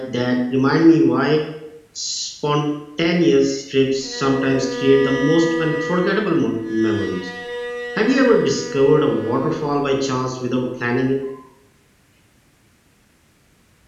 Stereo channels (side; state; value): both; identical; correlation 1.00